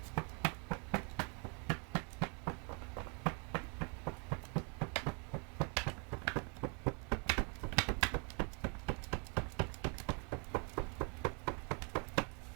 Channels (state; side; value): quieter; left; 36.0 dB